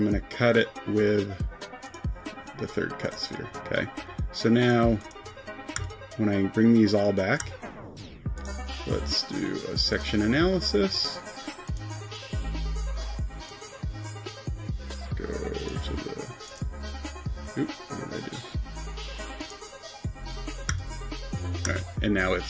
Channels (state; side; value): identical; both; correlation 1.00